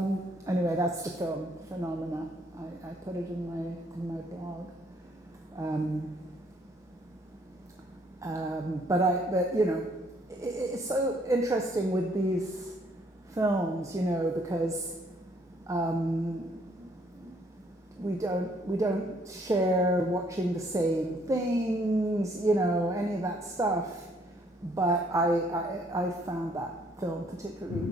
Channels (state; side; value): normal; both; correlation 0.66